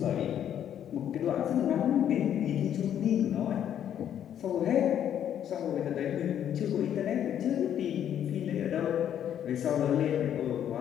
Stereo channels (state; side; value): quieter; right; 9.9 dB